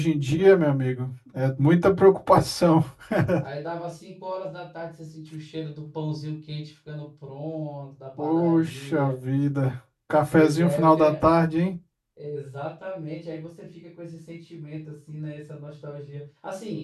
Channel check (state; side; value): identical; both; correlation 1.00